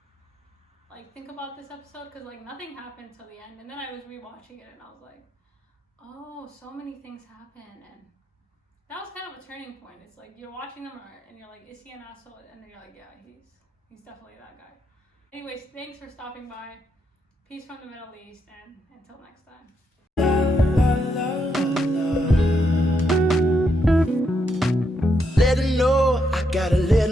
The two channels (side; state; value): both; normal; correlation 0.79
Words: think about this episode, because like nothing happened till the end, and then I was rewatching it and I was like, oh, so many things happen, and that was kind of a turning point. It's like you're watching them and you're like, is he an asshole? And then you're like, yeah, he's definitely that guy. Anyways, thanks for stopping by. Peace from the Middle East, and until next time. Let her know, I gotta let